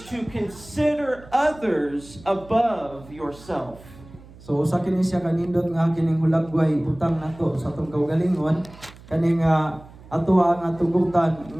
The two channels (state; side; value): noise; right; hum, 21 dB below the sound